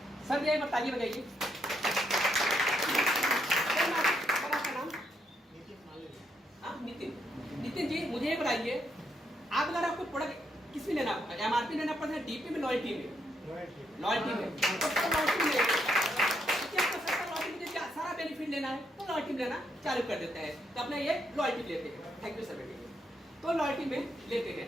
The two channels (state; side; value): normal; both; correlation 0.77